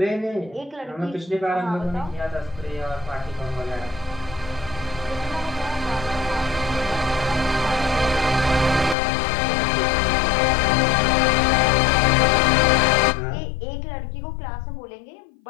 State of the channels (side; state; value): right; drops out; at 9.0 s